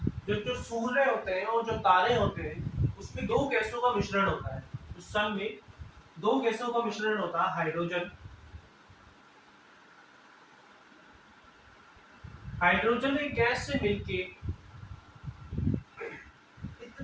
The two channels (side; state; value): both; identical; correlation 1.00